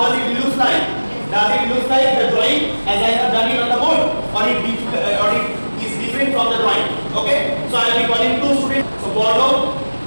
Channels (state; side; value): inverted; both; correlation -1.00